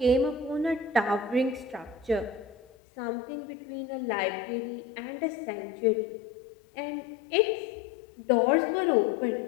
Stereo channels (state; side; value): drops out; right; at 2.7 s